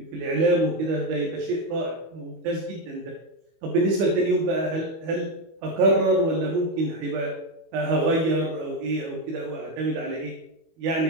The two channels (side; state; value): left; late; 25 ms